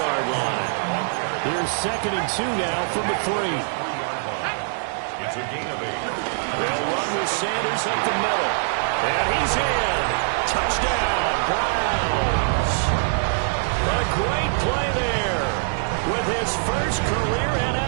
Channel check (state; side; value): silent; left; 63 dB below the other